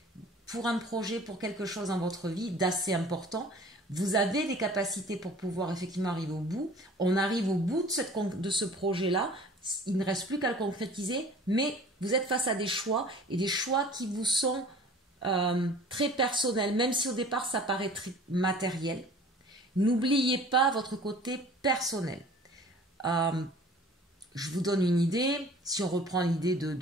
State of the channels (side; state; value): both; normal; correlation 0.46